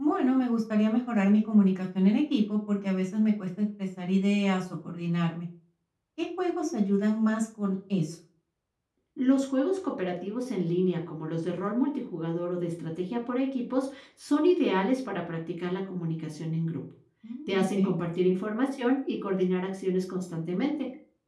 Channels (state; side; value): identical; both; correlation 1.00